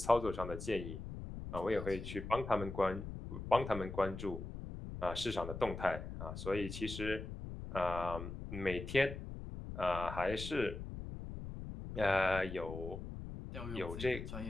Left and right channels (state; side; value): noise; left; rumble, 8 dB below the sound